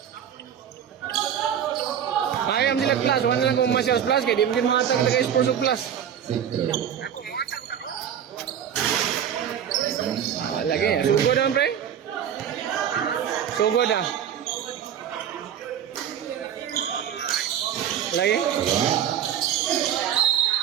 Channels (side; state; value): left; quieter; 9.3 dB